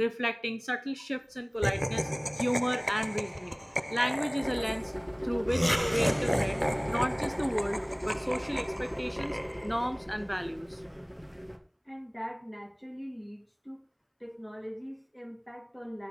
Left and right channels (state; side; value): identical; both; correlation 1.00